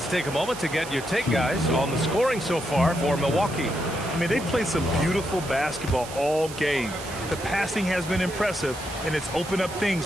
take a moment to get your take, guys, on the scoring so far for Milwaukee. I mean, they've played some beautiful basketball all game. The passing has been impressive, and it's opened up things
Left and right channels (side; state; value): right; noise; hiss, 13 dB below the sound